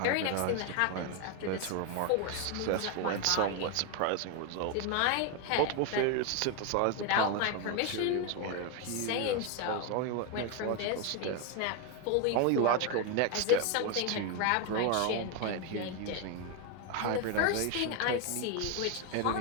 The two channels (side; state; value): both; different; correlation 0.01